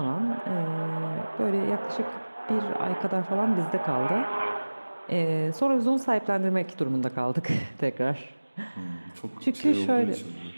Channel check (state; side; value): inverted; both; correlation -1.00